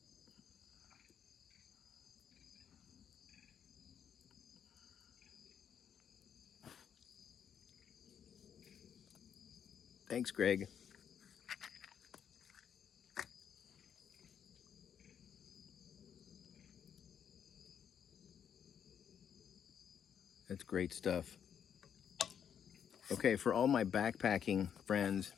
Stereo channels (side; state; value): right; quieter; 8.3 dB